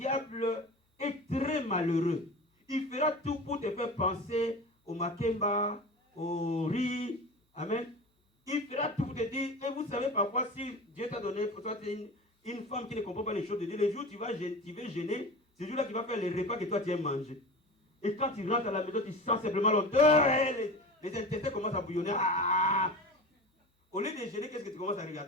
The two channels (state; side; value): normal; both; correlation 0.32